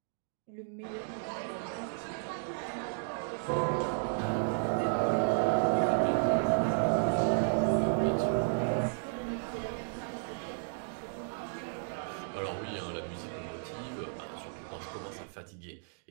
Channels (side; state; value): left; silent; digital silence